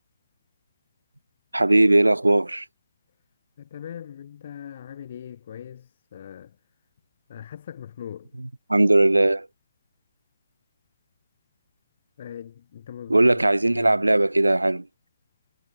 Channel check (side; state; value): both; inverted; correlation -0.99